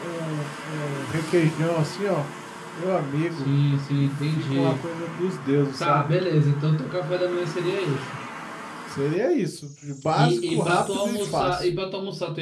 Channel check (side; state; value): both; identical; correlation 1.00